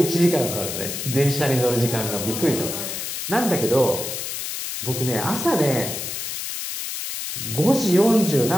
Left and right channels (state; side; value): noise; left; hiss, 5 dB below the sound